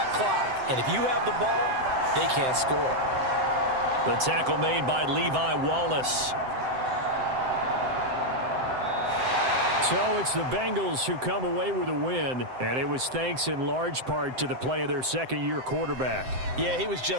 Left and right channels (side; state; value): left; late; 7.7 ms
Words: clock. And if you have the ball, they can't score. The tackle made by Levi Wallace. So it's the Bengals who come away with a win, and it was thanks in large part to the play of their second-year quarterback. Yeah, he was